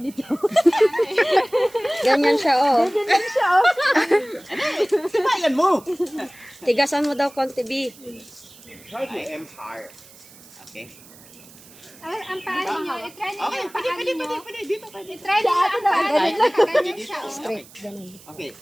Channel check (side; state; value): right; noise; hiss, 22 dB below the sound